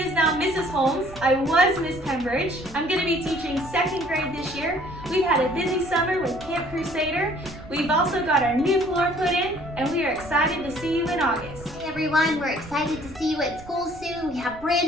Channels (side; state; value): right; noise; rumble, 18 dB below the sound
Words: now Mrs. Holmes. I was Miss Pembridge. I'm going to be teaching 2nd grade this year. We've had a busy summer with Camp Crusader. We've also got our new floor put in, and we are excited to see you in August. Hey everyone, we're excited to see you at school soon. We have brand